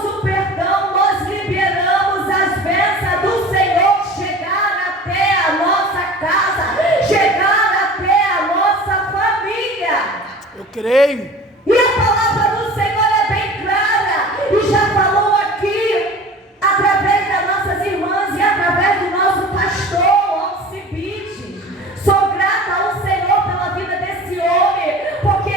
o perdão, nós liberamos as bênçãos do Senhor chegar até a nossa casa, chegar até a nossa família. Eu creio. E a palavra do Senhor é bem clara, e já falou aqui, através das nossas irmãs e através do nosso pastor, Alcibiades. Sou grata ao Senhor pela vida desse homem, porque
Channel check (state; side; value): normal; both; correlation 0.40